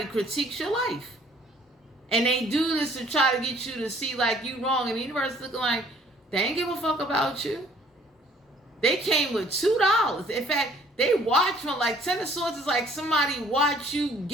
critiques your life. And they do this to try to get you to see like you wrong. And the universe is looking like, they ain't give a fuck about you. They came with $2. In fact, they watch from like 10 of Swords is like somebody watch you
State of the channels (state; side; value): normal; both; correlation 0.58